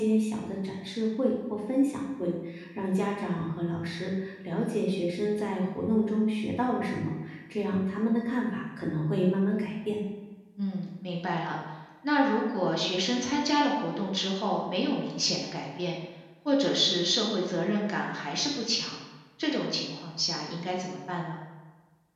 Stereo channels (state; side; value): identical; both; correlation 1.00